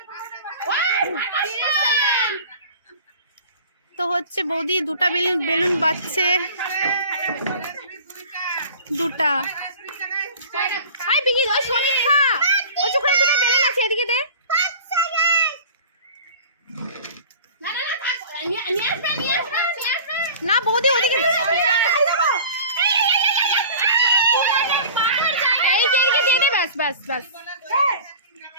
তো হচ্ছে বৌদি দুটা বেলুন বাজছে। দুটা। হাই বিকি, ওই সমীক্ষা, ওই চোখে দুটো বেলুন আছে, এদিকে দে। না বৌদি ওদিকে এই যে এদিকে দিয়ে দে। ব্যাস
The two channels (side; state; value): both; inverted; correlation -0.41